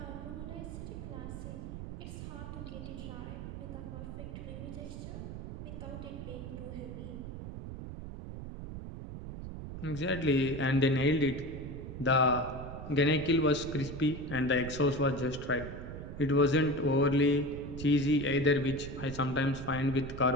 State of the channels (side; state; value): right; noise; rumble, 9 dB below the sound